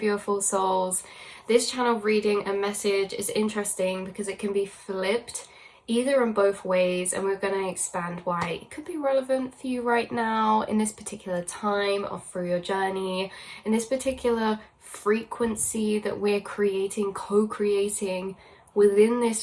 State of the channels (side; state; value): both; identical; correlation 1.00